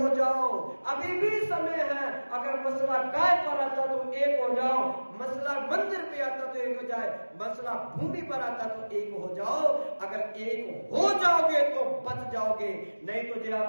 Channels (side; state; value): both; inverted; correlation -1.00